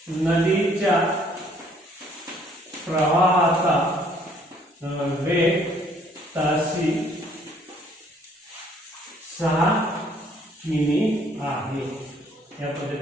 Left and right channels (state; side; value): normal; both; correlation 0.62